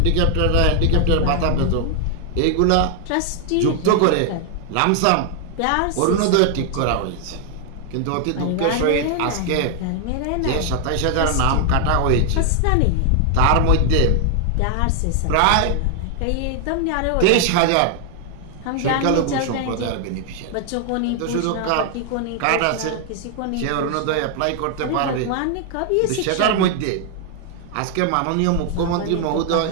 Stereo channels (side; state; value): both; different; correlation 0.00